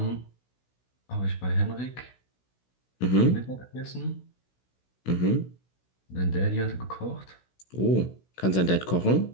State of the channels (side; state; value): right; late; 16 ms